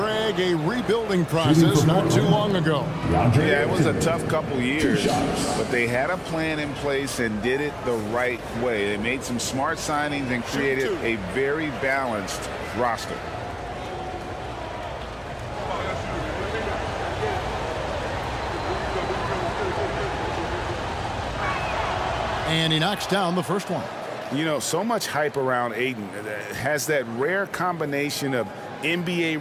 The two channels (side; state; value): both; identical; correlation 1.00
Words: a rebuilding process not too long ago. Yeah, it was a tough couple years, but they had a plan in place and did it the right way. They made some smart signings and created a very balanced roster. And he knocks down the first one. You know, so much hype around Ayton. Has that rare combination of